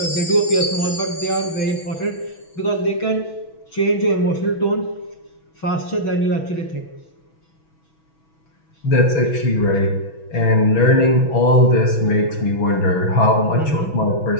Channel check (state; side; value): late; right; 6.2 ms